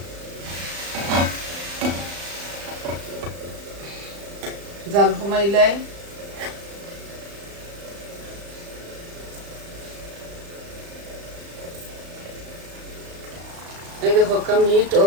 জাল কমাইলাই এই দেখো মিট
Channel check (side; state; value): left; late; 35 ms